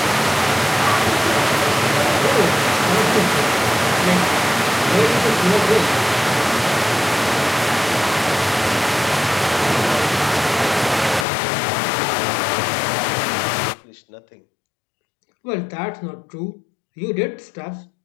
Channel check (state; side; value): drops out; right; at 11.2 s